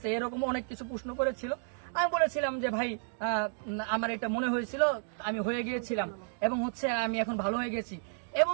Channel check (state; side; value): silent; left; 56 dB below the other